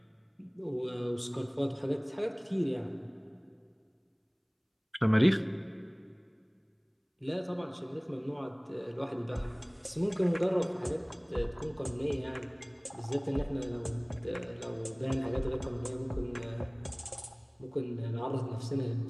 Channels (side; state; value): both; identical; correlation 1.00